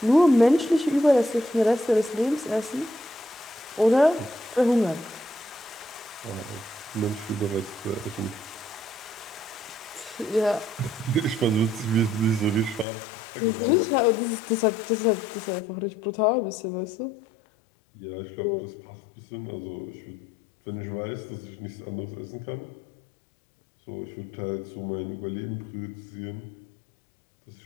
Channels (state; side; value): drops out; right; at 12.9 s